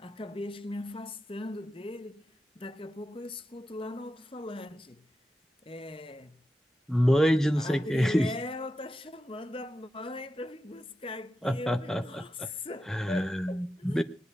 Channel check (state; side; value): normal; both; correlation 0.90